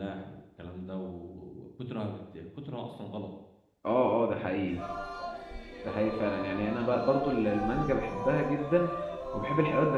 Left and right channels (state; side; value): identical; both; correlation 1.00